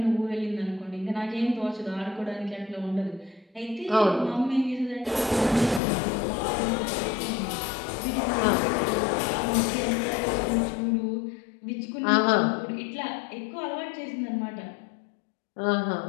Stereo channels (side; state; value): right; drops out; at 5.8 s